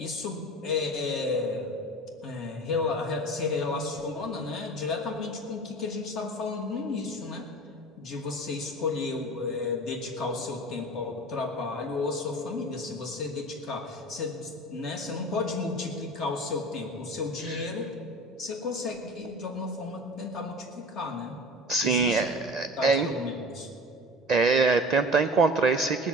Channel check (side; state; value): both; normal; correlation 0.37